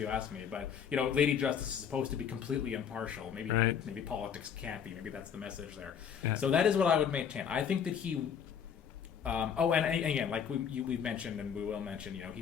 asked me. But, Lady Justice is supposed to be completely impartial. Maybe politics can't be. Maybe that's the message there. Yeah. So that is what I would maintain. I think that he... and again, like we've mentioned and we will mention, he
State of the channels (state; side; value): quieter; right; 7.7 dB